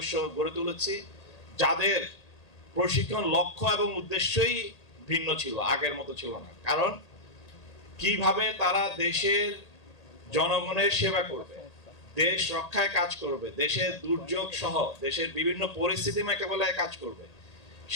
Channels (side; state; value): right; late; 1.8 ms